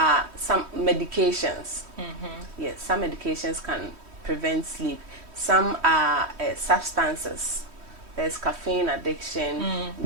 some medications. Yes, some medications can prevent sleep. Some are substances. There's caffeine addiction,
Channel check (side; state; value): left; late; 3.1 ms